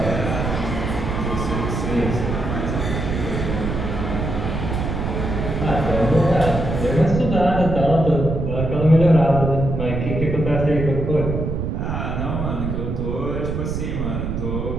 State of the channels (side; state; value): right; noise; rumble, 3 dB below the sound